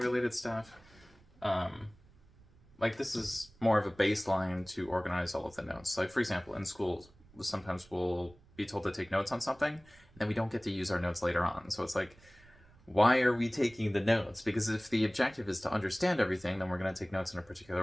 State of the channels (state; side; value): noise; right; rumble, 27 dB below the sound